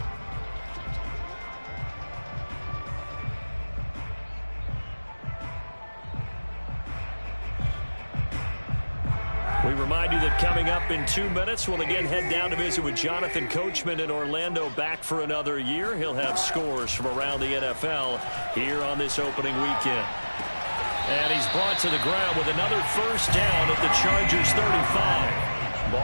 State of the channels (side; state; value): both; inverted; correlation -1.00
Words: We remind you that coming up in 2 minutes, we'll again head down to visit with Jonathan Coachman in Orlando, back for another year. He'll have scores from around the NFL here on this opening weekend. And he's brought to the ground with another 1st down at the Chargers 35.